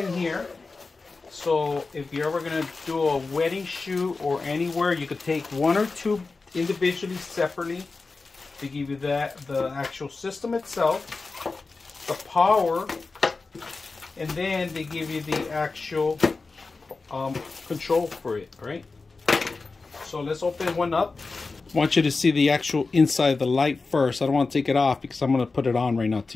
here. So if you're ever going to do a wedding shoot or anywhere, you could take one or two individually, separately. They give you the actual system itself, the power, and then they give you the actual control for it, right? So let's open one up. I want you to see the actual inside of the light first. I don't want to take it off because I'm going to put it on right now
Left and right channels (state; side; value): quieter; right; 3.9 dB